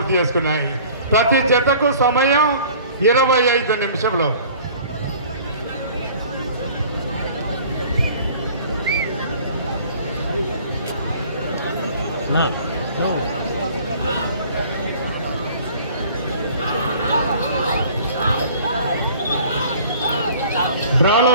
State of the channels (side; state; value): both; inverted; correlation -0.49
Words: చేసుకున్నాయి. ప్రతి జతకు సమయం 25 నిమిషంలో.